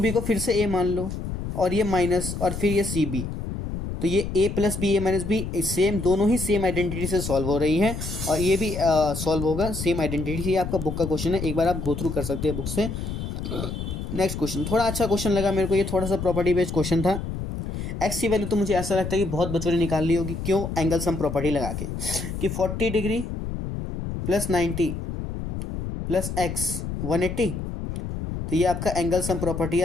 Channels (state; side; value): noise; left; rumble, 5 dB below the sound